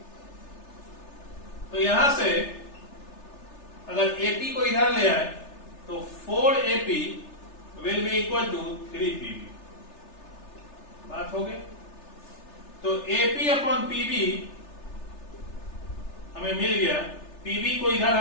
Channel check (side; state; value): right; late; 3.3 ms